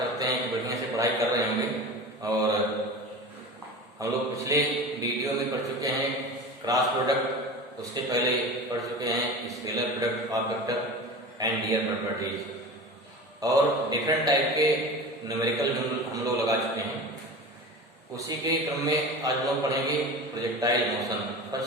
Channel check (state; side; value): normal; both; correlation 0.32